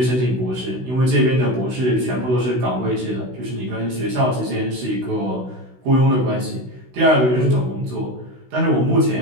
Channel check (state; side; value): late; left; 16 ms